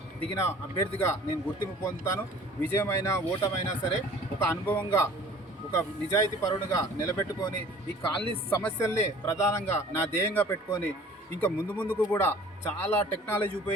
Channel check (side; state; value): both; normal; correlation 0.49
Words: దిగిన అభ్యర్థిగా నేను గుర్తింపు పొందుతాను. విజయమైనా ఓటమైనా సరే ఒక అనుభవంగా ఒక నిజాయితీ పరుడుగా నిలబెట్టుకొని ఈ కాలనీ సమస్యల్ని ప్రధానంగా నా ధ్యేయంగా పెట్టుకొని ఇంకా ముందుకు కూడా చాలా టెక్నాలజీ